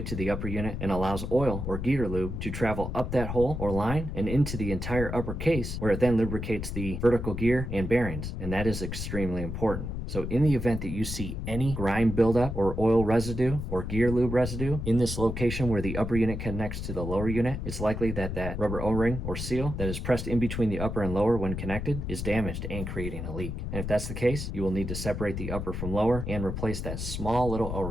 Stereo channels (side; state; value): left; noise; rumble, 5 dB below the sound